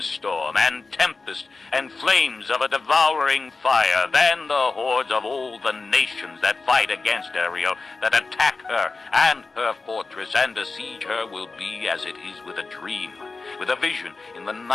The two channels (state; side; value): quieter; right; 4.0 dB